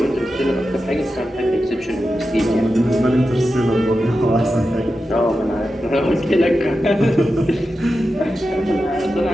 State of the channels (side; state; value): both; normal; correlation 0.91